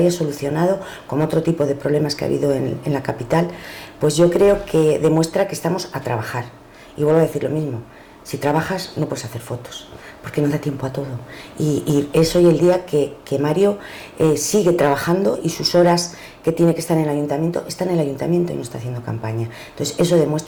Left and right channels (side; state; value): both; identical; correlation 1.00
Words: solucionado como otro tipo de problemas que ha habido en la capital, pues yo creo que demuestra que estamos a trabajar. Y vuelvo a decir lo mismo, si trabajas no puedes hacer fotos, porque no da tiempo a todo. Y es hoy el día que Mario sigue trabajando y sus horas que tiene que estar en el ayuntamiento, está en el ayuntamiento y no está haciendo campaña. Entonces eso